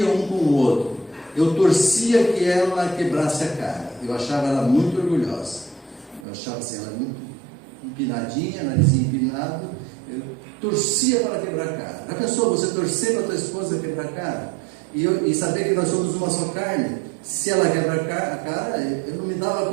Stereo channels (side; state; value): left; drops out; at 6.2 s